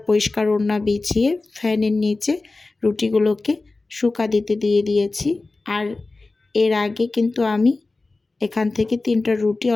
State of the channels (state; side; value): quieter; right; 3.4 dB